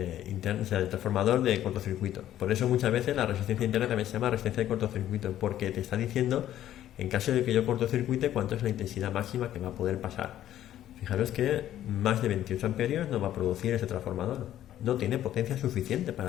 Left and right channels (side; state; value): right; quieter; 12.2 dB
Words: interno, o sea, el transformador de cortocircuito. Por eso muchas veces la resistencia interna también se llama resistencia de cortocircuito, porque te está diciendo, en caso de que yo cortocircuite, cuánto es la intensidad máxima que va a poder pasar. Fijaros que más de 28 amperios no va a producir este transformador. No tiene potencia suficiente